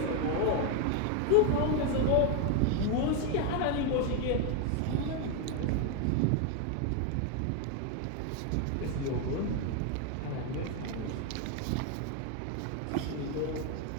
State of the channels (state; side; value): different; both; correlation 0.01